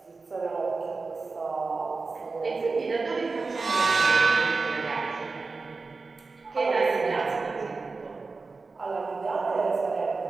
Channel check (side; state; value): left; quieter; 4.1 dB